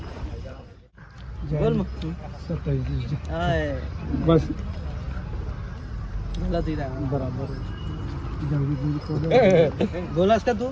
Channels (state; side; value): identical; both; correlation 1.00